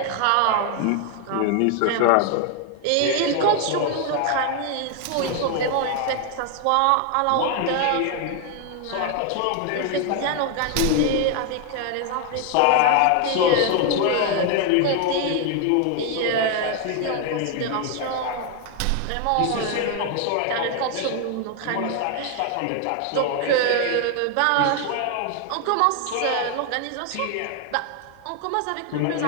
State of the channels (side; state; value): both; different; correlation 0.01